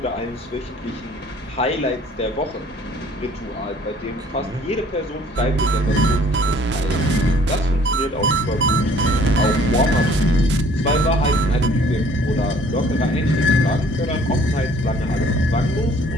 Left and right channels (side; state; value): both; normal; correlation 0.56